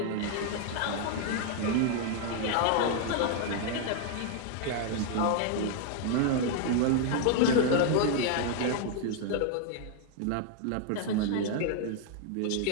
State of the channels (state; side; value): different; both; correlation 0.00